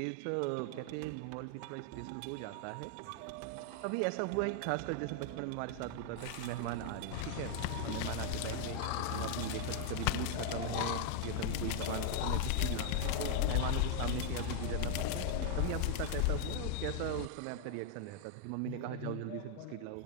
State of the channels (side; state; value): both; different; correlation 0.00